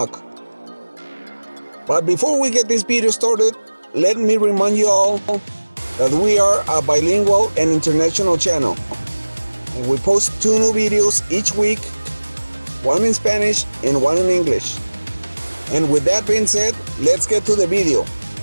But before we get this video started, let me remind you all that we are a bilingual and international channel, and we post 2 new videos each week, one in Spanish and one in English. And with that being said, let's get to the video.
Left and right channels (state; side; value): inverted; both; correlation -1.00